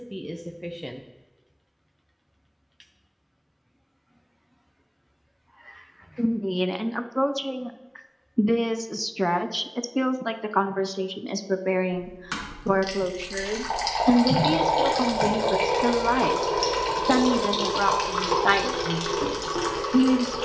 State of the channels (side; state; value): both; identical; correlation 1.00